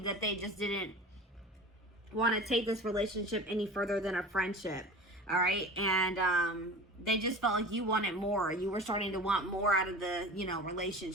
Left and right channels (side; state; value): both; normal; correlation 0.36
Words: that they just didn't want to take this relationship any further than a friendship. All right, and they just felt like you wanted more. You were starting to want more out of the